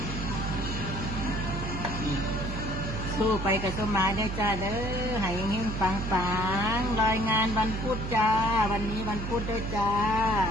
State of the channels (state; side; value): noise; right; hum, 4 dB below the sound